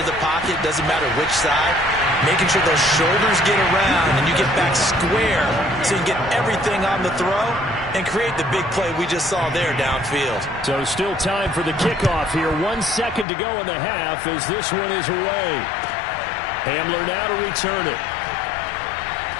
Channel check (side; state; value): right; drops out; at 13.2 s